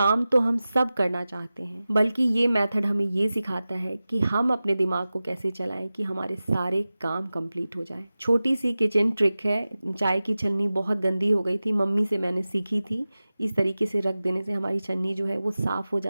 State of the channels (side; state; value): both; inverted; correlation -0.96